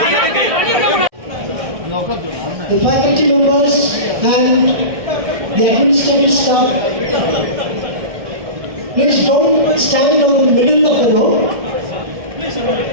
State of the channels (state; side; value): late; left; 1.6 ms